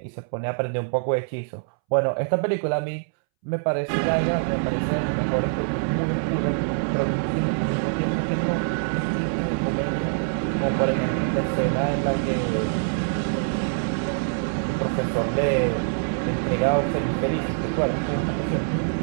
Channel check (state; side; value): silent; left; 62 dB below the other